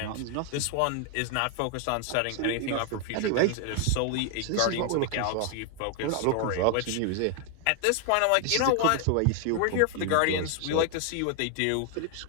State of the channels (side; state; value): both; different; correlation 0.00